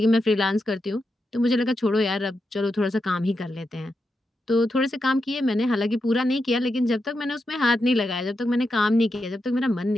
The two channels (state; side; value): normal; both; correlation 0.87